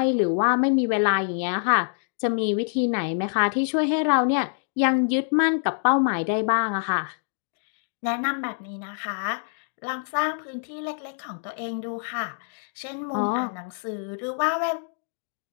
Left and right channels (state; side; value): silent; right; digital silence